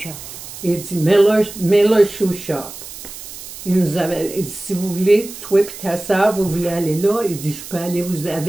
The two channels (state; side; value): noise; right; hiss, 13 dB below the sound